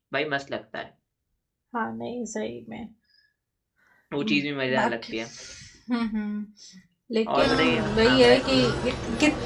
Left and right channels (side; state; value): both; identical; correlation 1.00